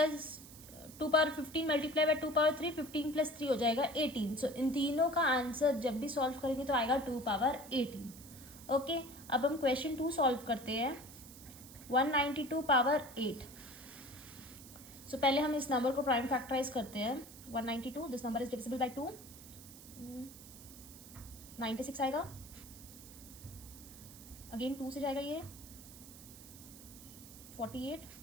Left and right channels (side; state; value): right; noise; hiss, 17 dB below the sound